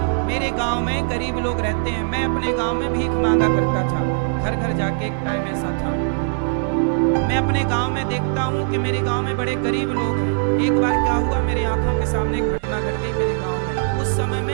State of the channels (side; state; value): left; silent; digital silence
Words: मेरे गांव में गरीब लोग रहते हैं, मैं अपने गांव में भीख मांगा करता था, घर घर जाके। एक टाइम ऐसा था, मैं अपने गांव में देखता हूं कि मेरे गांव में बड़े गरीब लोग हैं। एक बार क्या हुआ, मेरे आंखों के सामने घटना घट गई मेरे गांव में।